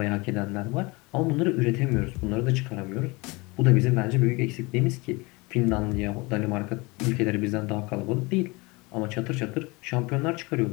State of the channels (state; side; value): quieter; right; 25.3 dB